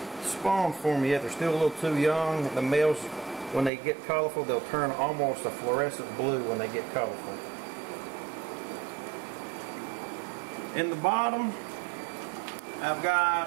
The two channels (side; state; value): left; drops out; at 3.7 s